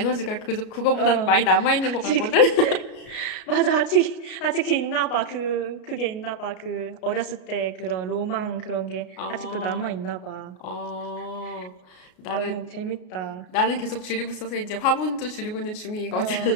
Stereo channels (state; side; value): late; right; 33 ms